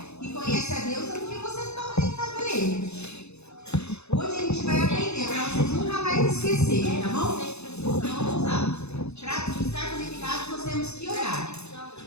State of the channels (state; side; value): late; right; 0.80 ms